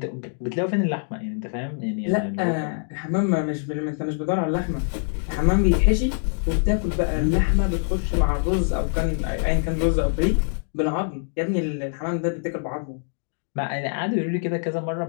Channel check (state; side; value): silent; right; digital silence